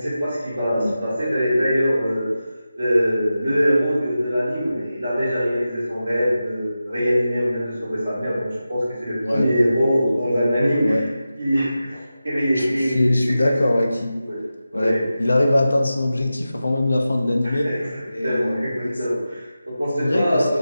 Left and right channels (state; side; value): inverted; both; correlation -0.93